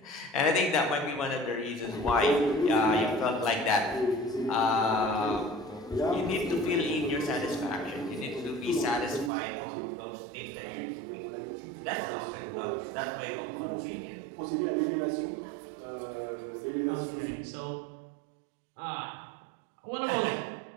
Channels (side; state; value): left; drops out; at 9.3 s